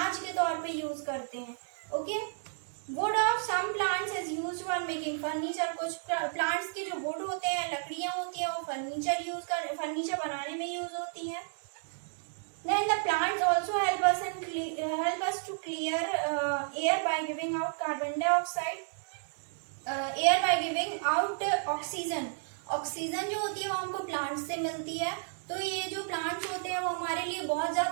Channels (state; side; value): silent; left; digital silence